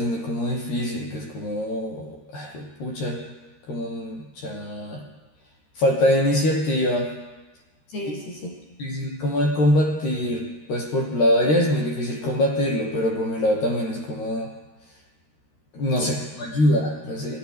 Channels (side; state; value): right; late; 13 ms